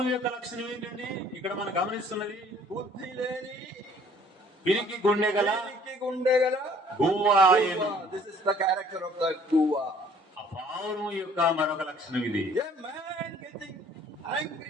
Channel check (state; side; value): normal; both; correlation 0.56